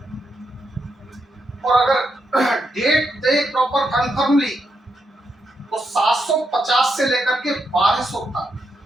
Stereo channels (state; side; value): normal; both; correlation 0.82